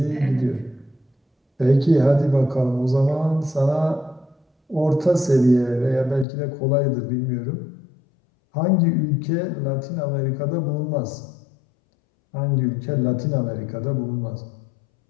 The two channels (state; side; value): drops out; right; at 6.2 s